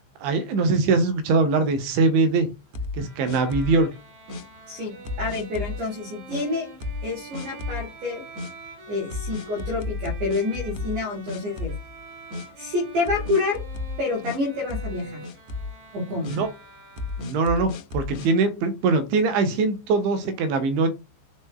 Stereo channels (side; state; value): left; late; 15 ms